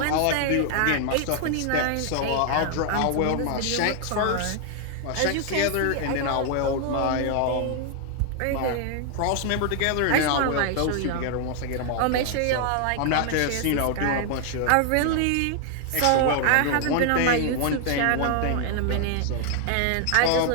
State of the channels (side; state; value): both; different; correlation 0.00